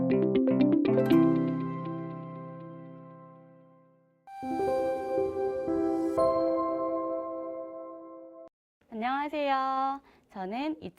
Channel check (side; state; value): both; identical; correlation 1.00